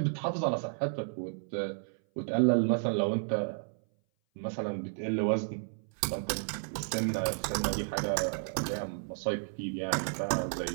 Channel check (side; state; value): left; silent; 56 dB below the other